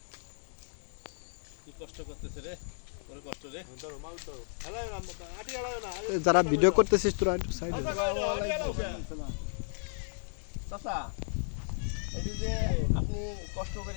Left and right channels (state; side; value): silent; right; digital silence